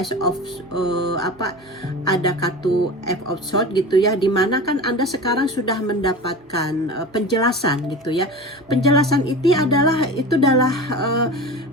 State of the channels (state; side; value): normal; both; correlation 0.32